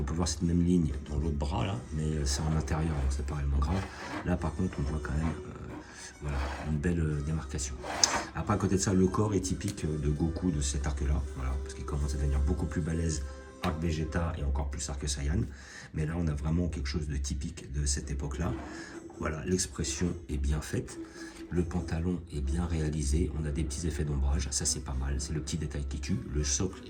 peut voir cette même ligne dans l'autre bras là, mais c'est en intérieur, donc c'est pas réellement grave. Là, par contre, on voit quand même voilà, une belle démarcation. Après, à côté de ça, le corps est typique de Goku de cet arc-là, voilà, parce qu'il commence à devenir beaucoup plus balèze. Arc Vegeta et encore plus Arc Saiyan. Mais là, on a vraiment quelque chose de typique de cette époque-là. Voilà, l'expression est bien faite. Le pantalon est bien réalisé. On a des petits effets d'ombrage. Ça, c'est pas mal. C'est le petit détail qui tue. Le socle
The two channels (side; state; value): both; identical; correlation 1.00